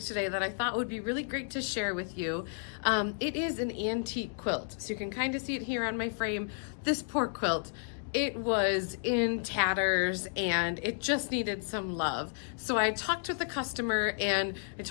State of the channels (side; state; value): right; silent; digital silence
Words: today that I thought would be really great to share with you. It is an antique quilt, so you can kind of see it here on my frame. This poor quilt, it was in tatters and it just needed some love. So I talked with the customer and I